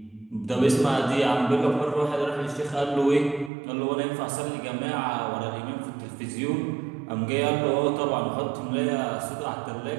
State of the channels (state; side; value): drops out; left; at 3.5 s